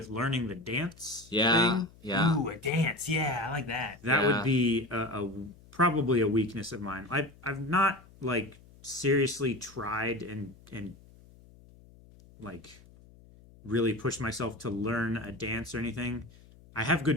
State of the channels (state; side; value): noise; left; hum, 24 dB below the sound